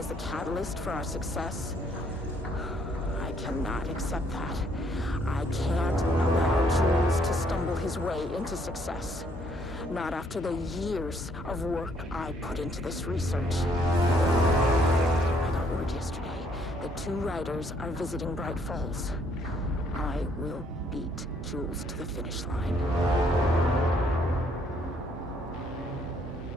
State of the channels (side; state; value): both; normal; correlation 0.67